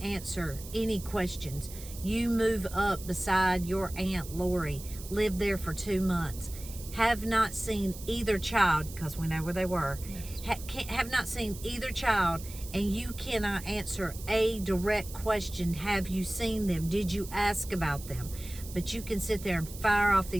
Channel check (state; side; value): noise; right; hiss, 14 dB below the sound